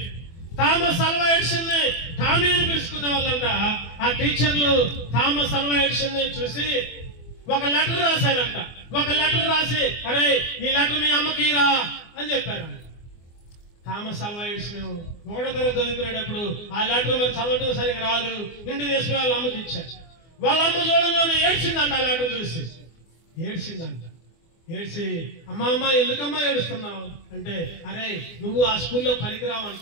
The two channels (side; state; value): right; late; 24 ms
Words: థామస్ అల్వా ఎడిసన్ టామీ అని పిలుచుకునే వాళ్ళంట. ఆ టీచర్లు థామస్ అల్వా ఎడిసన్ చూసి ఒక లెటర్ రాశారంట. ఒక లెటర్ రాసి, అరే ఈ లెటర్ మీ అమ్మకి రా అని చెప్పారంట. థామస్ అల్వా ఎడిసన్ 1వ తరగతి చదువుకునేటప్పుడు ఆ లెటర్ మరి చదవటం సరిగ్గా రాదు. ఇంటికి తీసుకుని వాళ్ళ అమ్మకి ఇచ్చారు. వాళ్ళ అమ్మ చూడంలోనే ఏడ్చిందంట. ఆ లెటర్ చూసి ఏడ్చిందంట. ఏడ్చి, అమ్మ ఎందుకమ్మా ఏడుస్తున్నావు అంటే, అరే నువ్వు ఆ స్కూల్లో పనికిరావు